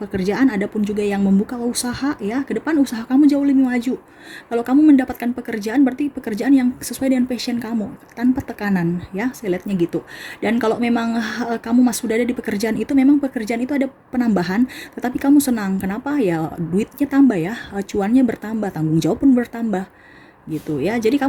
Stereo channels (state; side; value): identical; both; correlation 1.00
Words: Adapun juga yang membuka usaha ya, ke depan usaha kamu jauh lebih maju. Kalau kamu mendapatkan pekerjaan, berarti pekerjaan yang sesuai dengan passion kamu, tanpa tekanan ya, saya lihatnya gitu. Dan kalau memang kamu sudah ada di pekerjaan itu, memang pekerjaan itu ada penambahan, tetapi kamu senang. Kenapa? Ya duitnya tambah ya, cuannya bertambah, tanggung jawab pun bertambah gitu ya. Jadi